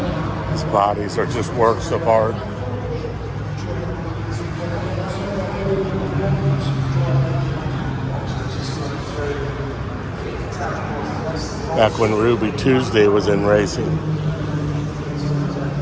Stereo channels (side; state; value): both; identical; correlation 1.00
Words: These bodies are just works of art. Back when Ruby Tuesday was in racing.